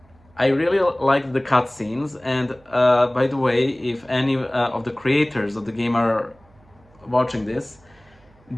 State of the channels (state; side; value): noise; right; hum, 30 dB below the sound